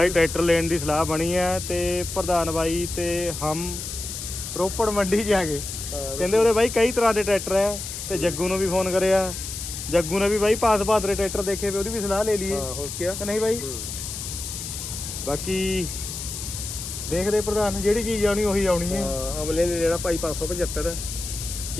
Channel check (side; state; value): left; noise; hiss, 7 dB below the sound